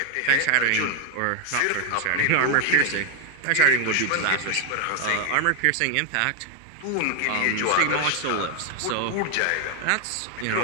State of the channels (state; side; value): different; both; correlation 0.01